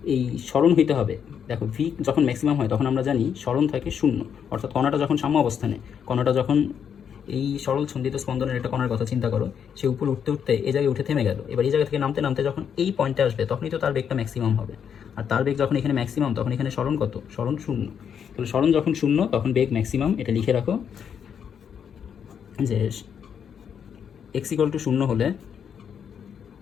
এই স্মরণ হইতে হবে। দেখো ভি যখন ম্যাক্সিমাম হয় তখন আমরা জানি স্মরণ থাকে শূন্য, অর্থাৎ কণাটা যখন সাম্য অবস্থানে, কণাটা যখন এই সরল ছন্দিত স্পন্দনের একটা কণার কথা চিন্তা করো, সে উপরে উঠতে উঠতে এই জায়গায় উঠে থেমে গেল, এবার এই জায়গা থেকে নামতে নামতে যখন এই পয়েন্টে আসবে তখনই তো তার বেগটা ম্যাক্সিমাম হবে। আর তার বেগ যখন এখানে ম্যাক্সিমাম তখন এখানে স্মরণ কত, স্মরণ শূন্য। তাহলে স্মরণ যখন শূন্য তখন বেগ ম্যাক্সিমাম, এটা লিখে রাখো যে এক্স ইকুয়াল টু শূন্য হলে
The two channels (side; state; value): right; quieter; 7.8 dB